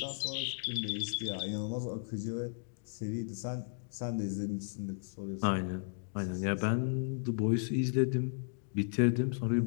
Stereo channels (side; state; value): right; silent; digital silence